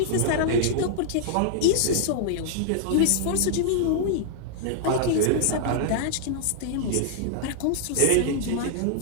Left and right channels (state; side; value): different; both; correlation -0.01